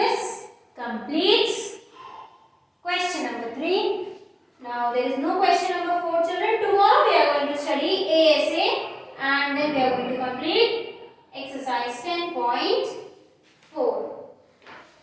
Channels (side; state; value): both; identical; correlation 1.00